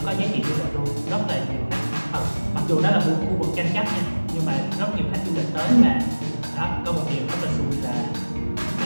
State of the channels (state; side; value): inverted; both; correlation -1.00